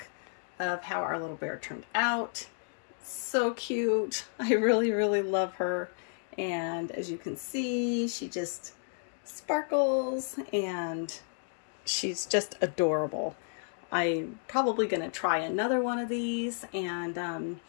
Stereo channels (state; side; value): silent; right; digital silence